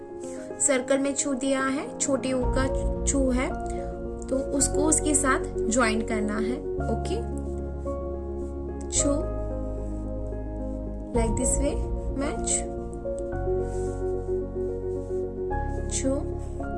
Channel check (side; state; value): both; identical; correlation 1.00